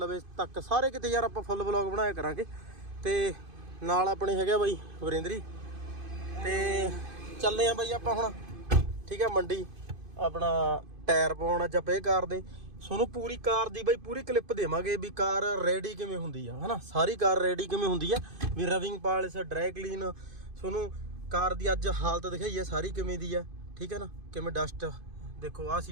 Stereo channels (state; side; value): late; left; 2.5 ms